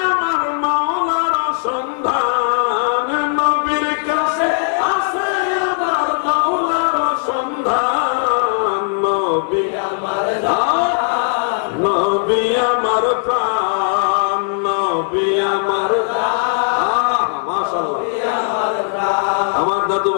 আমার মাওলার সন্ধান, নবীর কাছে আছে আমার মাওলার সন্ধান, নবী আমার জান, নবী আমার প্রাণ, নবী আমার মাশাআল্লাহ। আমার দাদু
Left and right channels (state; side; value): silent; right; digital silence